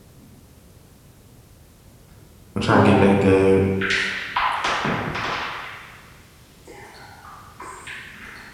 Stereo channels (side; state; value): both; identical; correlation 1.00